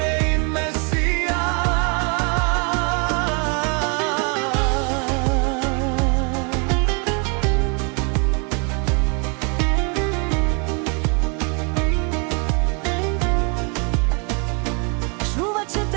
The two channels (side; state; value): left; quieter; 34.9 dB